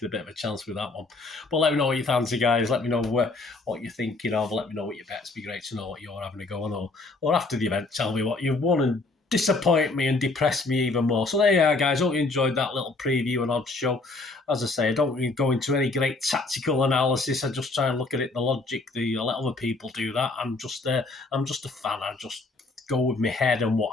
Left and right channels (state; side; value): quieter; right; 3.4 dB